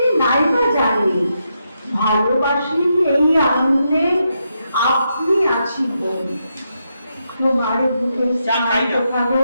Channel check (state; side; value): inverted; both; correlation -0.83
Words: নাই বা জানি, ভালোবাসি এই আনন্দে আপনি আছি বোন। তোমার বুকে কালো